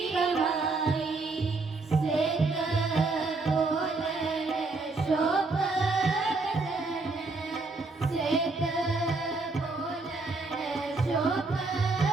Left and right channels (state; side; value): quieter; left; 3.6 dB